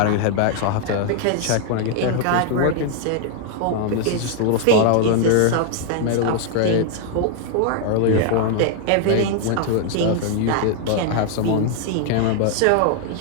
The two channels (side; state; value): both; different; correlation 0.00